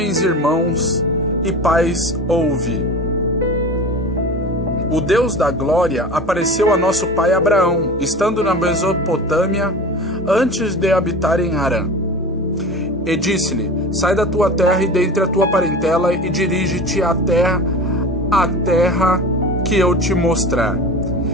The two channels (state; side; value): normal; both; correlation 0.33